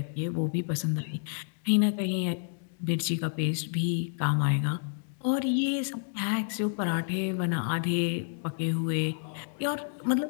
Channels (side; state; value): right; silent; digital silence